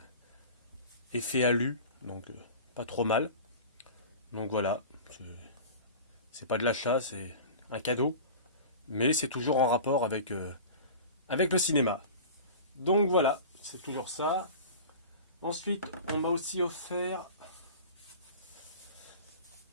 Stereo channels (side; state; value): both; inverted; correlation -0.36